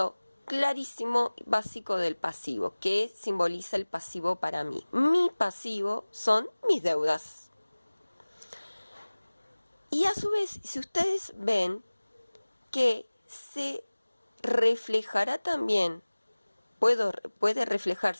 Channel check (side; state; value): both; inverted; correlation -1.00